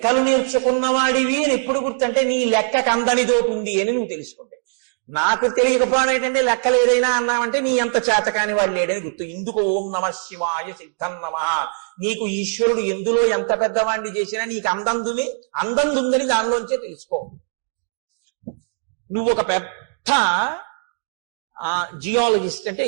నేర్చుకున్నవాడివి అని ఎప్పుడు గుర్తంటే నీ లెక్కకు అందనిదోటి ఉంది అని నువ్వు తెలుసుకుంటే. నాకు తెలియకపోవడం ఏంటంటే లెక్కలు ఏదైనా అన్నామంటే నీ అంత చేతకాని వాడు లేడని గుర్తు. ఇందుకు ఓం నమ శివాయ సిద్ధం నమ. నీకు ఈశ్వరుడు ఎందులో ఎంత పెద్దవాడిని చేసినా నీకు అందందుందని దానిలోంచే తెలుసుకో. నువ్వు ఒక పెద్ద జియాలజిస్ట్ అంటే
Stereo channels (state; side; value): silent; left; digital silence